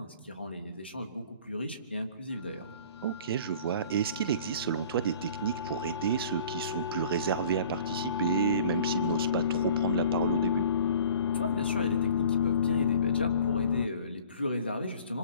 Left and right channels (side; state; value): both; inverted; correlation -0.49